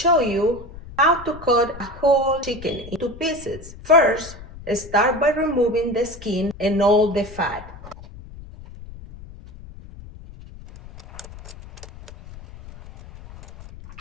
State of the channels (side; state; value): left; noise; rumble, 16 dB below the sound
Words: you how to cut a whole chicken into pieces. First, start by removing the skin and all the fat.